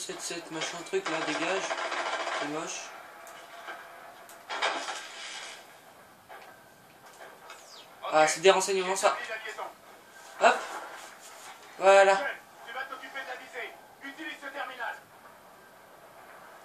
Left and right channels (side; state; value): both; identical; correlation 1.00